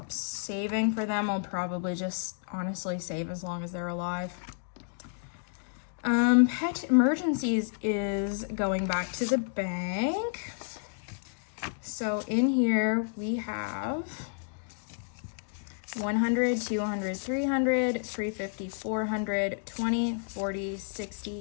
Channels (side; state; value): right; silent; digital silence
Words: saving for them. I'll probably just honestly save as long as they're alive. Pet emergencies is going back to the bank. So in here we have 100, 200, 300, 350, 400, 20, 40,